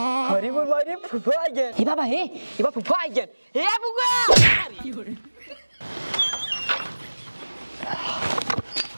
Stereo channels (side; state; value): both; inverted; correlation -1.00